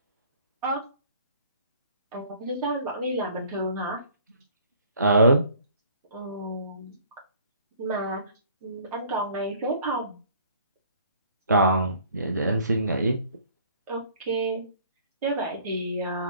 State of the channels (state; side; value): inverted; both; correlation -0.54